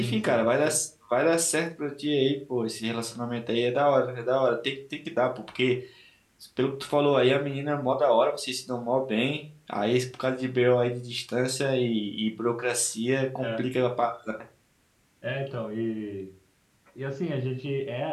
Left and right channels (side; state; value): both; identical; correlation 1.00